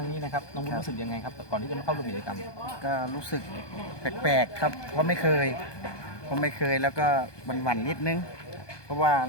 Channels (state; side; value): late; right; 1.2 ms